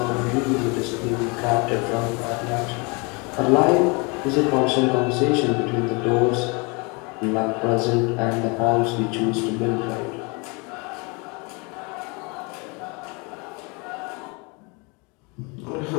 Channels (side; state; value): right; quieter; 30.1 dB